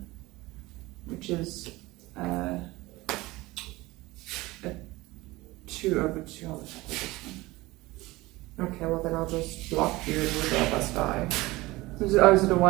which is 2 over 2. I'll attack with this one. Okay, well then I'll just block you and we'll both of us die. Is it a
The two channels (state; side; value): quieter; left; 20.2 dB